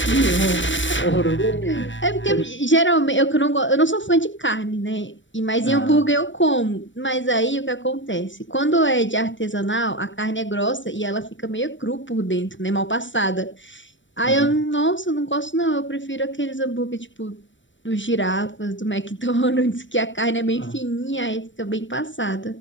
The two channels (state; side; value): late; right; 0.55 ms